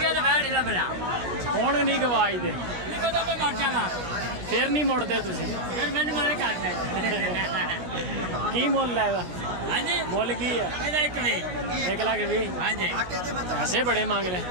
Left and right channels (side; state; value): left; late; 17 ms